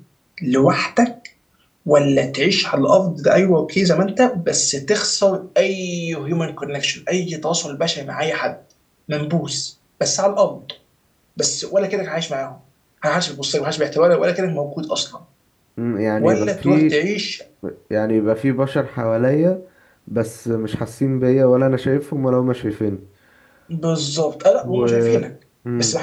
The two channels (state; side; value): identical; both; correlation 1.00